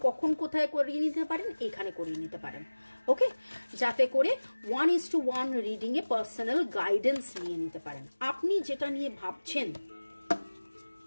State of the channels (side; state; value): both; inverted; correlation -1.00